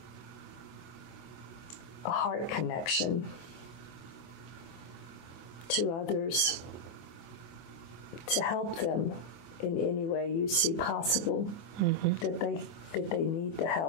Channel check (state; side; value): late; right; 24 ms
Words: a heart connection to others to help them in any way you see possible, that they need the